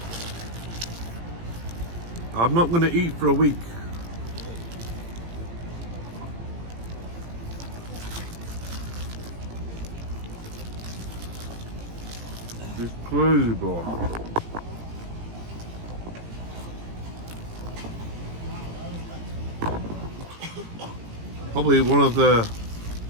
I'm not going to eat for a week. It's crazy, bro. Probably one of the,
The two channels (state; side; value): late; left; 18 ms